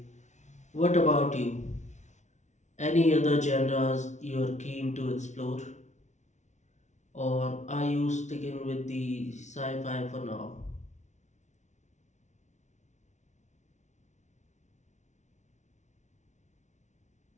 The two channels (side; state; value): right; late; 0.34 ms